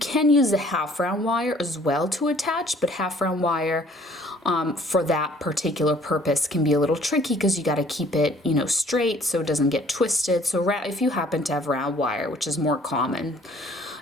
use a half round wire as well to attach, but half round wire for that particular purpose can be a little tricky because you got to keep it, straight so it doesn't get twisted. So if you happen to have round wire, which is more common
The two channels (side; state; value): both; normal; correlation 0.57